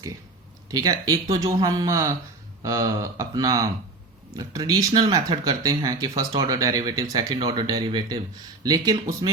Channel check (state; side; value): quieter; left; 3.2 dB